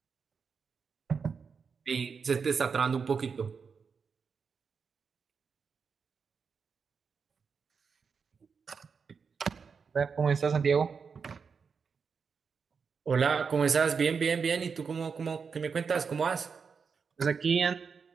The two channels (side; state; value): left; quieter; 5.7 dB